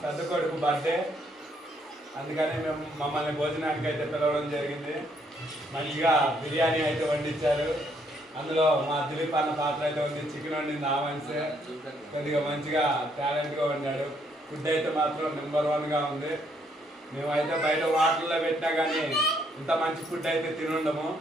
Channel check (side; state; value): both; normal; correlation 0.70